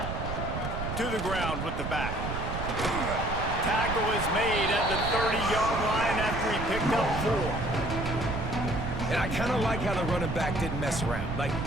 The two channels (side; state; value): right; noise; rumble, 4 dB below the sound